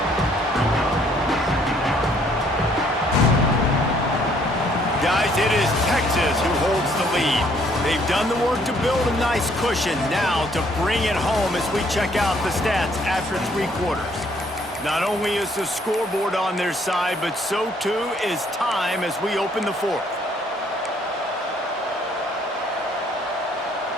Guys, it is Texas who holds the lead. They've done the work to build a nice cushion. Now to bring it home as we check out the stats after 3 quarters. Not only is the scoreboard on their side, but so too is time as we open the fourth.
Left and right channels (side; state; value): both; normal; correlation 0.64